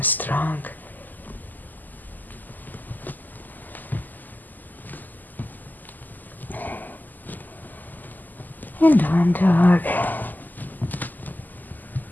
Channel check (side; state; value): right; late; 0.085 ms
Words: strong. And down dog.